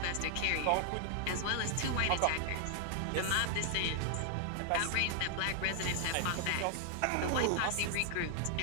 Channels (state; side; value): different; both; correlation 0.00